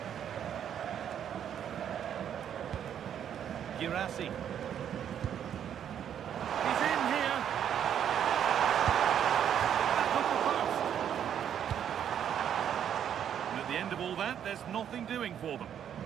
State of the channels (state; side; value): quieter; left; 9.2 dB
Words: Girassi. He's in here. Back off the post. And at the end of all that, there's nothing doing for them.